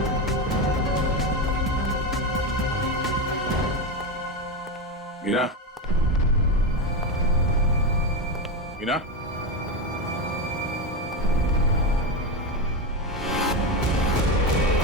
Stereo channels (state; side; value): normal; both; correlation 0.14